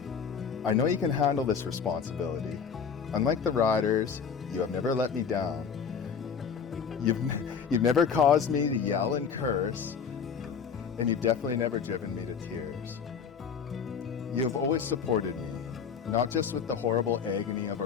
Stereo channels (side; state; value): right; quieter; 6.5 dB